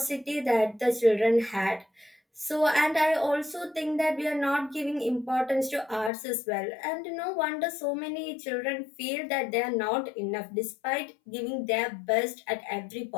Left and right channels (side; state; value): right; drops out; at 6.1 s